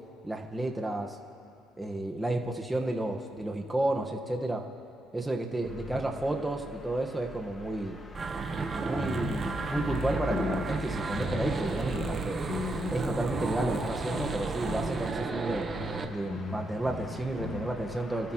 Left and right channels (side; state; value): both; normal; correlation 0.83